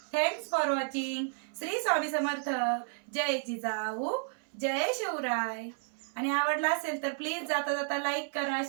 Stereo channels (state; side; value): silent; left; 56 dB below the other